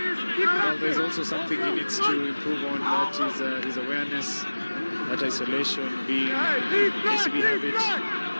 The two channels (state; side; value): inverted; both; correlation -1.00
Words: Well, there's also something he needs to improve on, that is his awareness, that isolation being KCB have it.